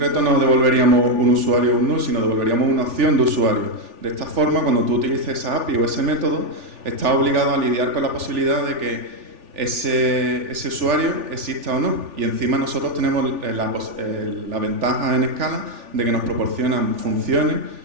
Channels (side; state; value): left; late; 3.4 ms